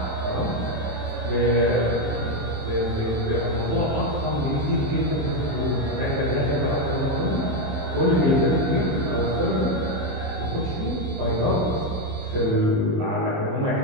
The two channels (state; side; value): late; left; 27 ms